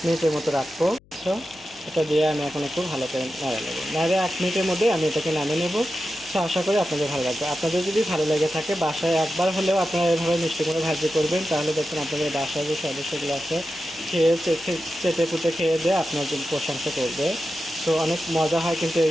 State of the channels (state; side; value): noise; left; hum, 29 dB below the sound